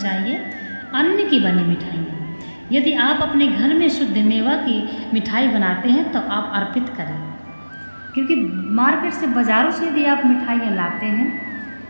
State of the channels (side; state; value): both; inverted; correlation -1.00